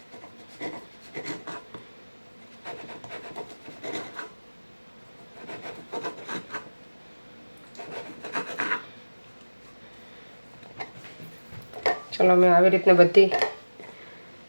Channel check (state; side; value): inverted; both; correlation -1.00